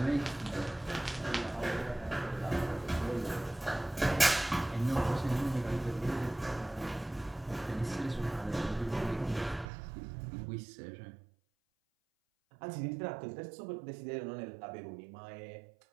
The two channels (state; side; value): drops out; left; at 9.7 s